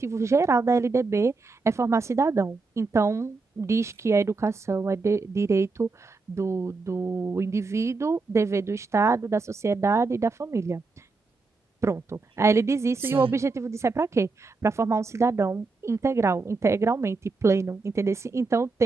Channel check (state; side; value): quieter; left; 3.9 dB